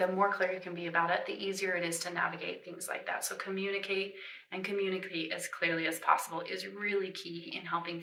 more clear you can be about it, the easier it is to navigate things like that. So communicate as clearly as possible is really key in helping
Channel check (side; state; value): both; identical; correlation 1.00